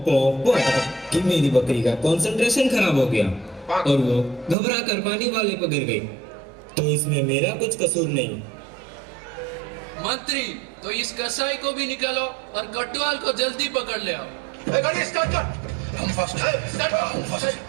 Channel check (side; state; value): left; drops out; at 4.5 s